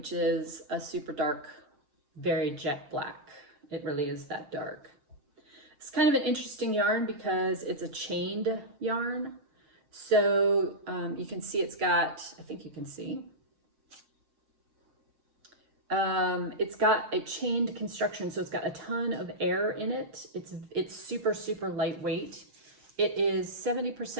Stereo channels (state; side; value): late; left; 7.3 ms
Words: is a super dark, very jet black. It really is that dark. It's kind of an interesting yarn because it's a chained yarn. So you can see it's got, I think you can see, it's got a chained construction, so it's got a ton of air in it. It's super, super lightweight. It is